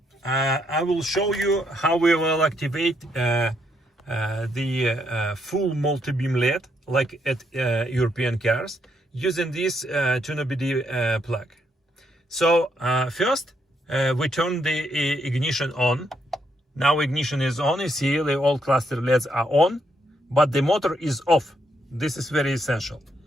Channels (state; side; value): normal; both; correlation 0.76